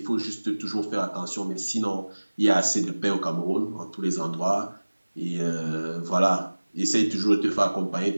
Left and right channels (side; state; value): both; inverted; correlation -1.00